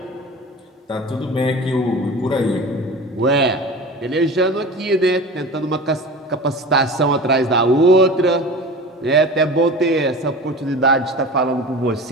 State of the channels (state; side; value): normal; both; correlation 0.35